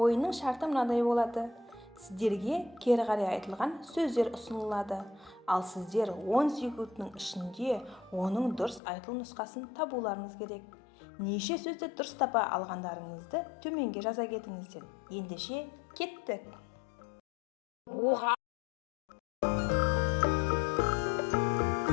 шарты мынадай болады. Сіздерге кері қарай айтылған сөздер ұсынылады. Ал сіздер 10 секундтың ішінде оның дұрыс айтылу нұсқасын табуларыңыз керек. Неше сөзді дұрыс тапа алғандарыңызды төменге жаза кетіңіздер. Ендеше кеттік. Оға.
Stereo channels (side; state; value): right; drops out; at 8.8 s